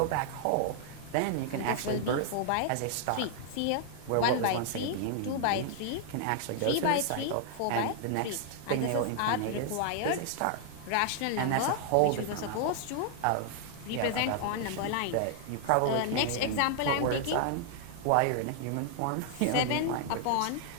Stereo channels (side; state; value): both; different; correlation -0.01